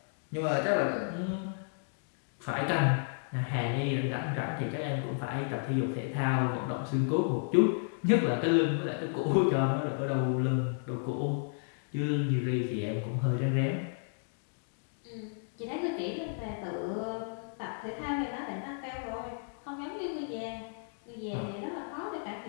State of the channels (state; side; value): silent; right; digital silence